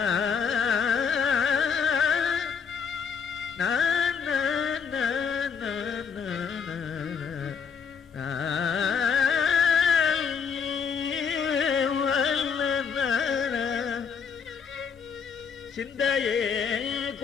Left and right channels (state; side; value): quieter; right; 6.4 dB